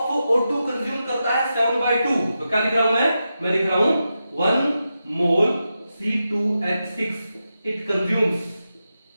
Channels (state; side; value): inverted; both; correlation -0.89